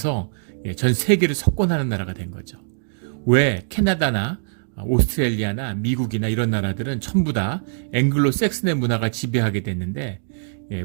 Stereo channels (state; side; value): silent; left; digital silence